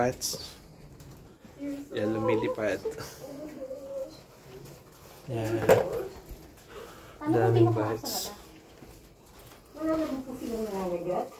yan lumilipad. Yan. Daming bats. Wala naman po silang nangangagat.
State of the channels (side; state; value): both; identical; correlation 1.00